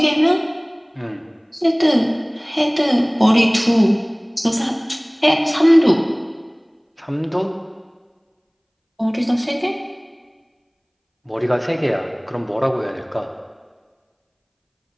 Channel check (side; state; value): both; identical; correlation 1.00